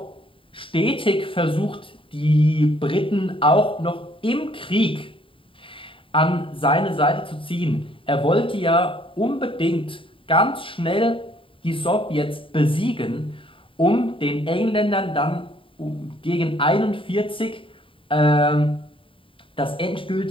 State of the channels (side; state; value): right; late; 0.25 ms